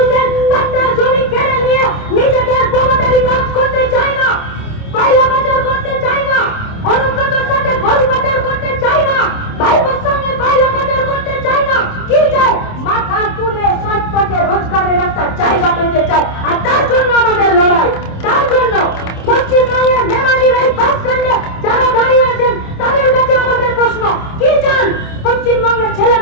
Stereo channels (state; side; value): late; right; 27 ms